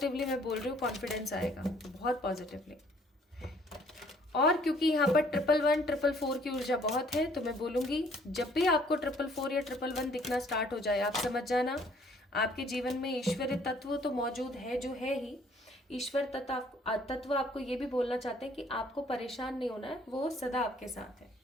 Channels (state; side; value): normal; both; correlation 0.60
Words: मैं बोल रही हूँ, कॉन्फिडेंस आएगा, बहुत पॉजिटिवली। और क्योंकि यहाँ पर 111 444 की ऊर्जा बहुत है, तो मैं बोलूँगी जब भी आपको 444 या 111 दिखना स्टार्ट हो जाए, आप समझ जाना आपके जीवन में ईश्वरीय तत्व तो मौजूद है, जो है ही। ईश्वर तत्व आपको ये भी बोलना चाहते हैं कि आपको परेशान नहीं होना है, वो सदा आपके साथ है।